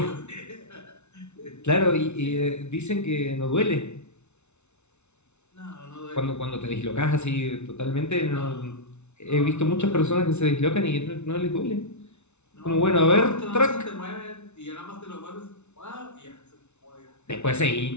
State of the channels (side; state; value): right; late; 0.82 ms